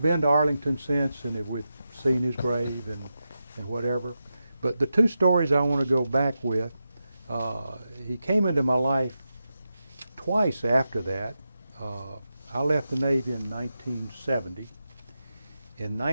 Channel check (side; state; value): both; inverted; correlation -0.89